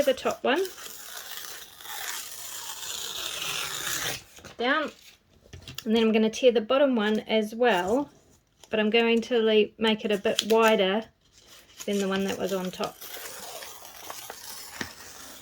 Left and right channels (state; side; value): identical; both; correlation 1.00